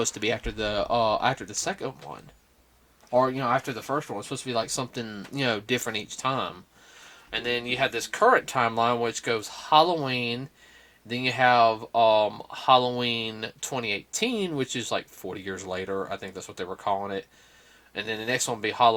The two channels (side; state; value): both; identical; correlation 1.00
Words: to be after the second one, or after the first one. It was supposed to be like something different each time. And then you had this current timeline which goes Halloween. Then you have Halloween 2018, which is like 40 years later. I think that's what they were calling it. And then the next one will be